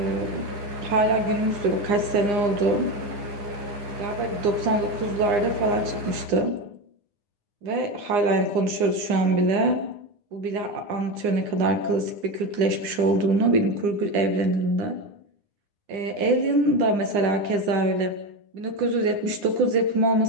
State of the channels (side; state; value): left; late; 9.8 ms